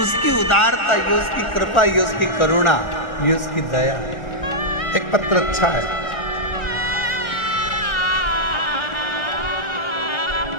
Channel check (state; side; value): late; right; 1.4 ms